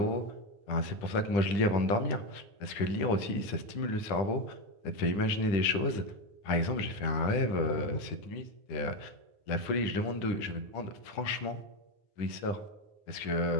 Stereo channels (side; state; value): right; late; 10 ms